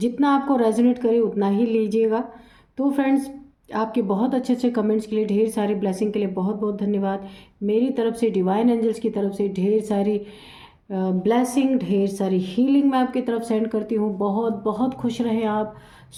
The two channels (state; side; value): identical; both; correlation 1.00